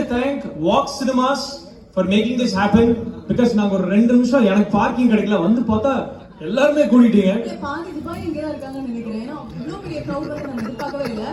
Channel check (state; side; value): identical; both; correlation 1.00